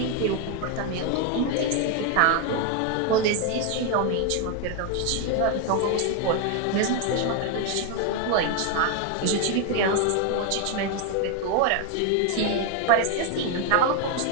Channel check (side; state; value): both; different; correlation 0.01